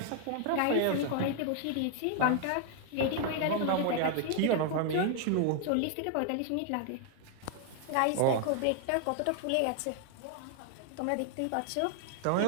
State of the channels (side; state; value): both; different; correlation 0.00